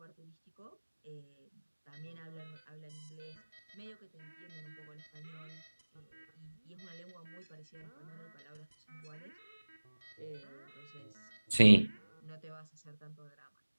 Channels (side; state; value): both; inverted; correlation -1.00